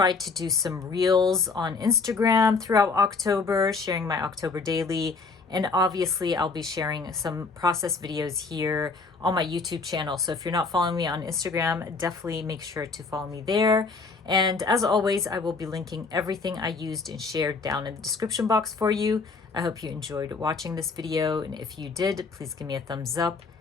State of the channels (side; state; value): right; quieter; 4.4 dB